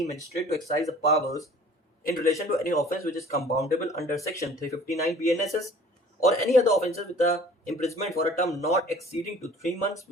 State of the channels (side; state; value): both; normal; correlation 0.49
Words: magistrate to exercise the powers in relation to any offence which is compoundable under section 359 BNSS or any other offences with a imprisonment for a term not exceeding to 3 months